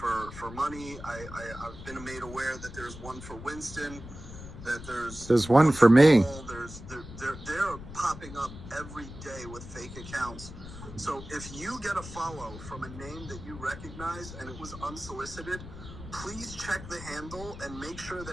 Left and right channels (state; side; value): noise; left; rumble, 13 dB below the sound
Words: money. I've been made aware that there's one for Winston, that there's one for me. They're popping up every day with fake accounts. So if you get a follow from a name that you recognize and it was unsolicited, please check the handle and make sure